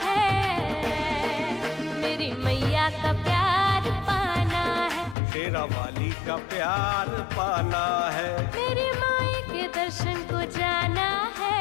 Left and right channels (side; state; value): right; drops out; at 5.2 s